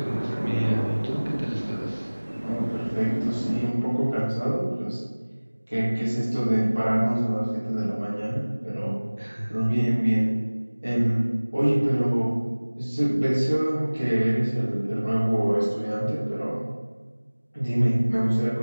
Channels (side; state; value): both; inverted; correlation -1.00